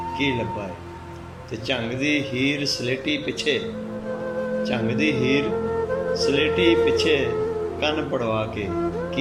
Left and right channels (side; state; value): both; identical; correlation 1.00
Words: की लब्बा है। ते झंग दी हीर सलेटी पिछे, झंग दी हीर सलेटी पिछे कन पड़वा के